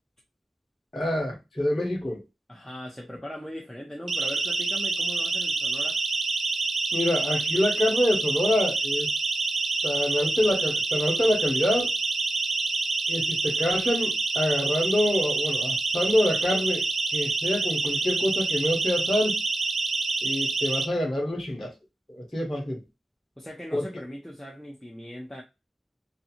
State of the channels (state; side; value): normal; both; correlation 0.91